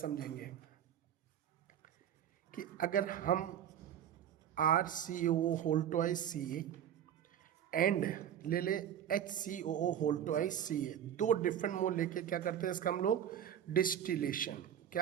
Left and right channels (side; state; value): left; quieter; 9.9 dB